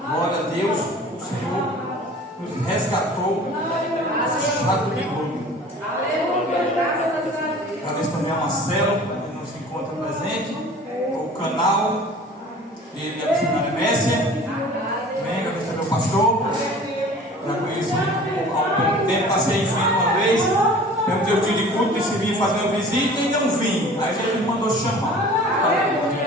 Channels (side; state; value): both; normal; correlation 0.44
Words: glória a Deus, o Senhor nos resgatou. Chato de glória. Agradeço também a Marcelo, que não se encontra presente, o canal, ele e a missionária Messia. Amém. Agradeço também ao pastor. Já conheço há algum tempo, passei em frente uma vez. Perguntei o dia de culto, decidi fazer uma visita e não vim. Aí Jesus mandou chamar.